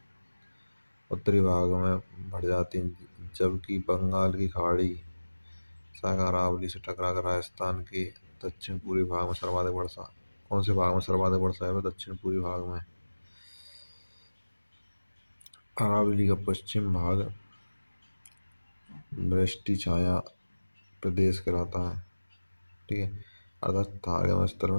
उत्तरी भाग में बढ़ जाती हैं, जबकि बंगाल की खाड़ी सागर अरावली से टकराकर राजस्थान के दक्षिण पूर्वी भाग में सर्वाधिक वर्षा। कौन से भाग में सर्वाधिक वर्षा है? दक्षिण पूर्वी भाग में। अरावली का पश्चिम भाग वृष्टि छाया प्रदेश कहलाता है। ठीक है। अर्थात थार स्तर में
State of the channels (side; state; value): both; inverted; correlation -1.00